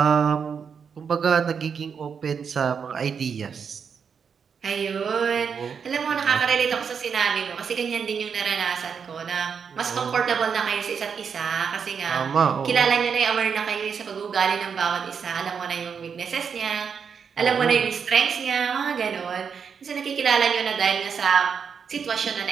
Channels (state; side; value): quieter; left; 6.6 dB